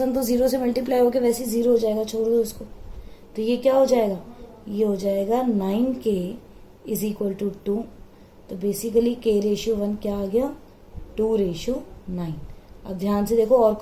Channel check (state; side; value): identical; both; correlation 1.00